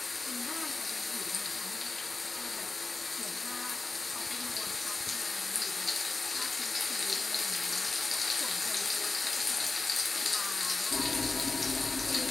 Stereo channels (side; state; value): right; quieter; 3.6 dB